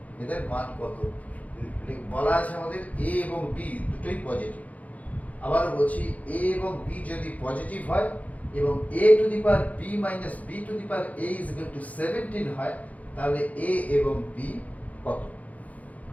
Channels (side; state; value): right; late; 0.072 ms